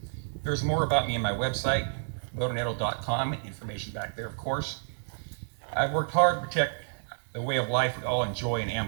There's more about me on my website, oneto.com, information back there, of course. I've worked hard to protect the way of life we all enjoy in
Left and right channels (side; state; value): left; silent; digital silence